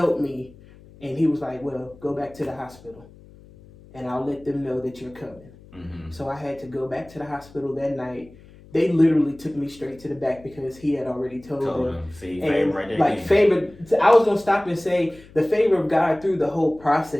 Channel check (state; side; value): noise; left; hum, 23 dB below the sound